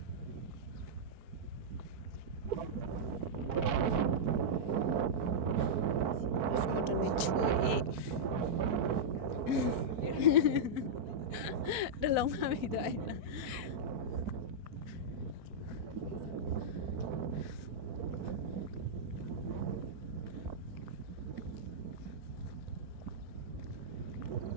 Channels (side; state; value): left; late; 4.6 ms